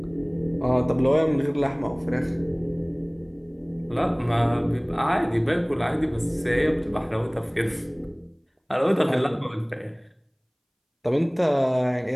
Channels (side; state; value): both; identical; correlation 1.00